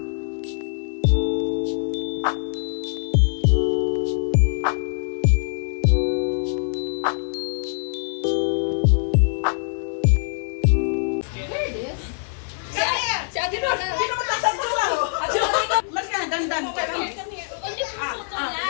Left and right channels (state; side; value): silent; right; digital silence